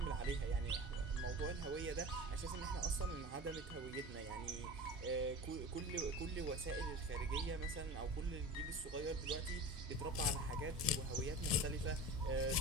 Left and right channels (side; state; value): both; normal; correlation 0.33